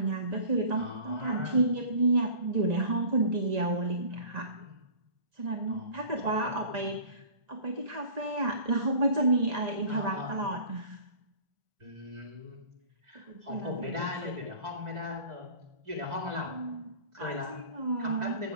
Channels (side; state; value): left; late; 1.4 ms